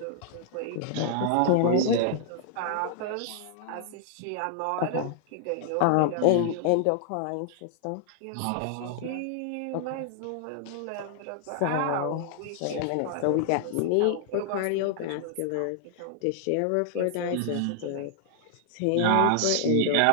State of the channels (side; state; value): both; different; correlation -0.01